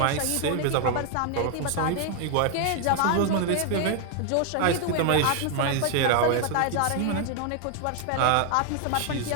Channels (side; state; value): both; different; correlation 0.00